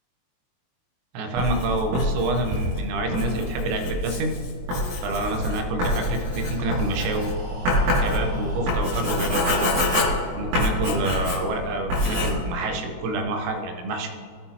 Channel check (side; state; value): left; late; 23 ms